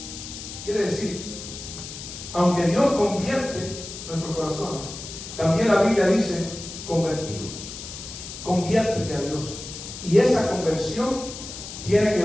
Quiere decir, aunque Dios convierte nuestros corazones, también la Biblia dice convertidos. Conviértete a Dios. Y esa conversión tiene que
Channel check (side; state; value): left; noise; hiss, 11 dB below the sound